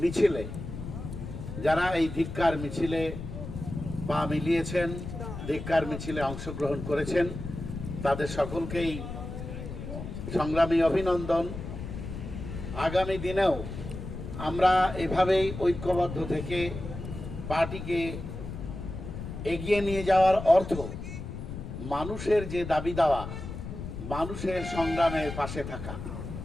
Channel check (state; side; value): noise; left; rumble, 8 dB below the sound